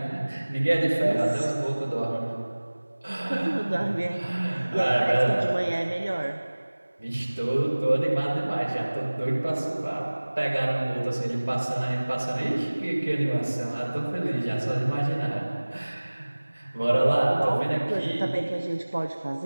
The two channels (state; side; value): inverted; both; correlation -1.00